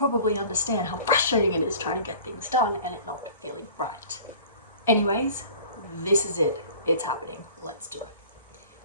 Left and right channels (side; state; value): both; inverted; correlation -0.45